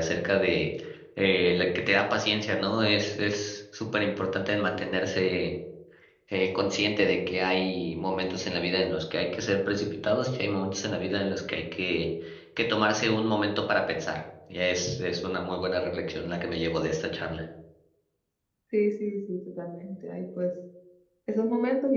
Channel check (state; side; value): identical; both; correlation 1.00